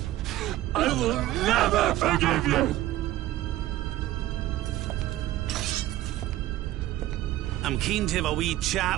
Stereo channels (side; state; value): left; quieter; 15.0 dB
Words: I will never forgive you! I'm keen to have a wee